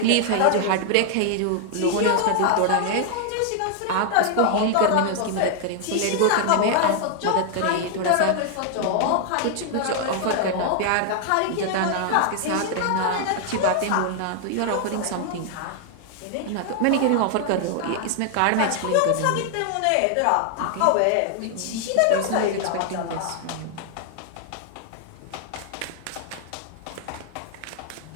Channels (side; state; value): both; different; correlation 0.00